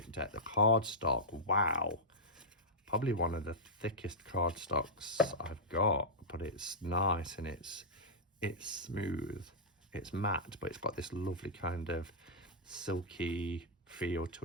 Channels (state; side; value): normal; both; correlation -0.09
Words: deck. The card stock, wow. Probably one of the thickest card stocks I've got, but it's nice and it's smooth. It's matte, but it's got this lovely kind of silky feel to